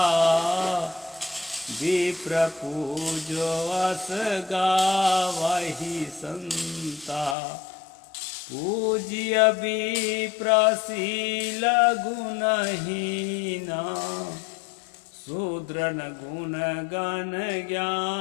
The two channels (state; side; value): drops out; right; at 7.4 s